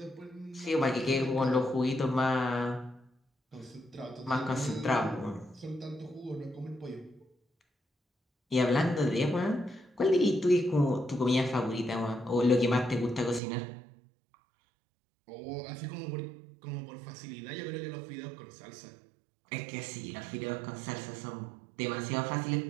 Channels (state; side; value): drops out; left; at 13.4 s